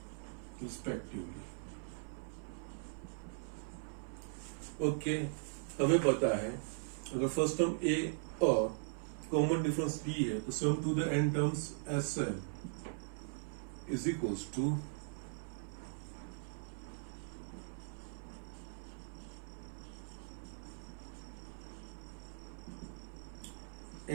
respectively. Okay, हमें पता है अगर फर्स्ट टर्म ए और कॉमन डिफरेंस बी है तो sum to the N terms S is equals to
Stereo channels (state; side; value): silent; left; 51 dB below the other